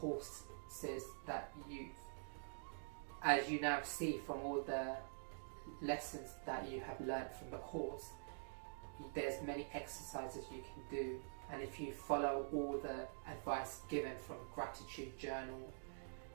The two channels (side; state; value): left; silent; digital silence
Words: that as you now see from all the lessons that you have learned from the course, there's many exercises you can do. And if you follow all the advice given, from gratitude journal